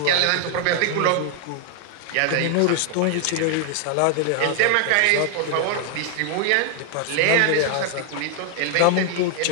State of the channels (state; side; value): different; both; correlation 0.00